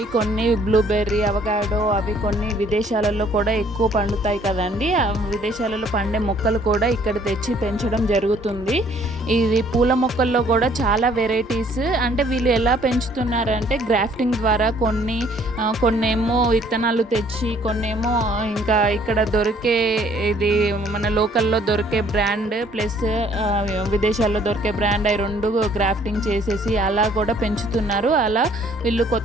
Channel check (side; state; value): both; normal; correlation 0.60